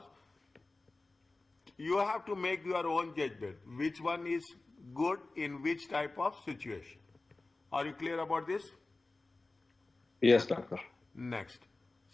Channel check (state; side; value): quieter; right; 3.2 dB